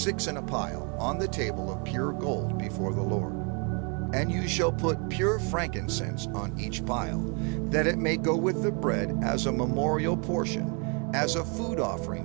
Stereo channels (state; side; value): quieter; left; 35.6 dB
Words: in a pile, on the table of pure gold before the Lord. And you shall put pure frankincense on each pile, that it may go with the bread as a memorial portion, as a food